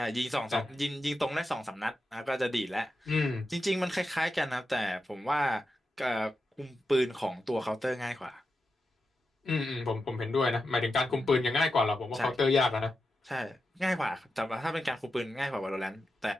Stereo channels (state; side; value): normal; both; correlation 0.89